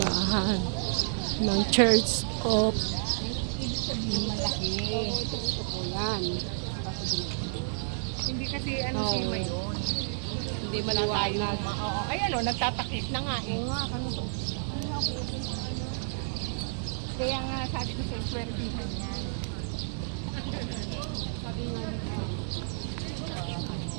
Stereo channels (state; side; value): silent; left; digital silence